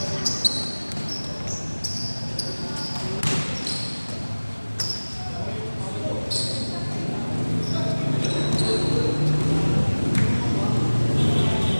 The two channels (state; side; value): inverted; both; correlation -1.00